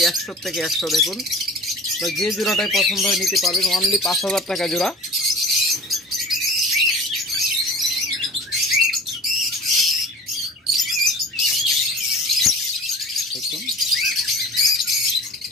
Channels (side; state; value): both; normal; correlation 0.39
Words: 100 থেকে 100। দেখুন তো যে জোড়াটাই পছন্দ হয় নিতে পারবেন অনলি 5,000 টাকা জোড়া। দেখুন